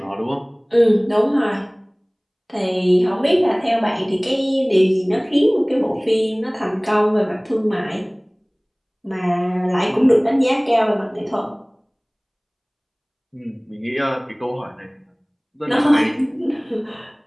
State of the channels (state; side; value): identical; both; correlation 1.00